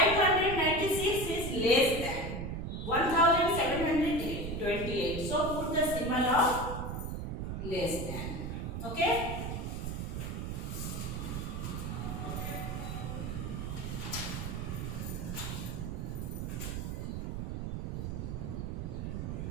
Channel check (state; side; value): noise; right; rumble, 4 dB below the sound